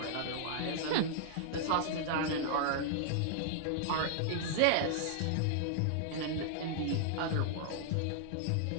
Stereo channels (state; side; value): different; both; correlation -0.01